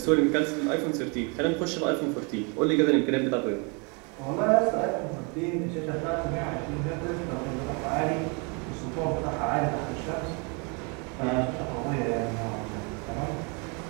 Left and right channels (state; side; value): quieter; left; 32.9 dB